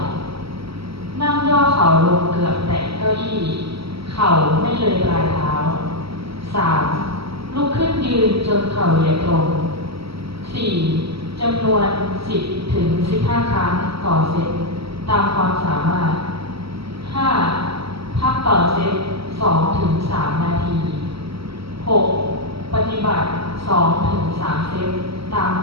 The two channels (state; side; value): late; left; 0.76 ms